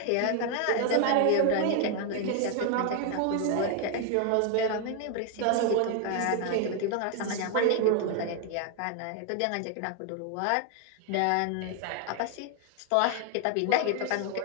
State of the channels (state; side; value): different; both; correlation 0.01